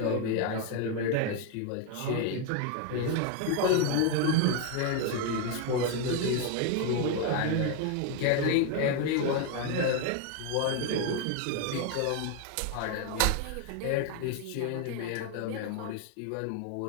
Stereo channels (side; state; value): both; different; correlation 0.01